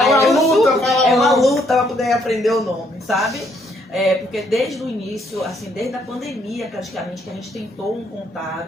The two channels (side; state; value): both; normal; correlation 0.70